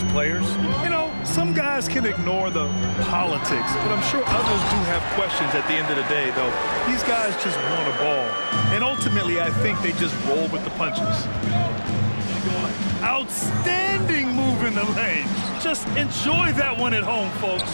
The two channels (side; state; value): both; inverted; correlation -1.00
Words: players? You know, some guys can ignore the politics, but I'm sure others do have questions at the end of the day, though. These guys just want a ball. And ultimately, I think they just roll with the punches. Outstanding move in the lane. Just enjoy that one at home,